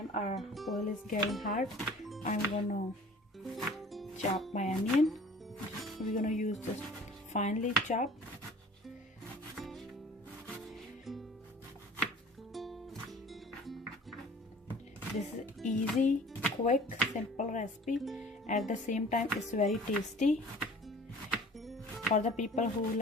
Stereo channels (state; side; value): normal; both; correlation 0.47